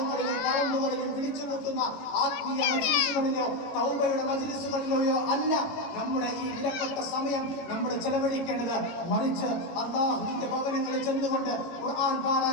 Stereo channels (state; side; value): late; right; 18 ms